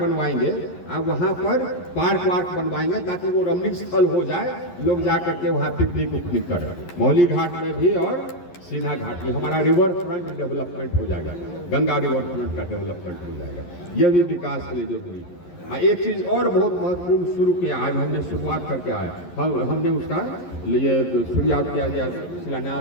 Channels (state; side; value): late; right; 11 ms